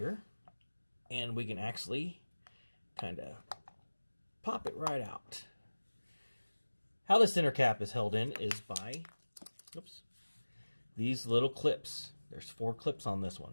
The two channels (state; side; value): inverted; both; correlation -1.00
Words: And we can actually kind of pop it right out. How the center cap is held in is by these little clips. There's 4 clips on this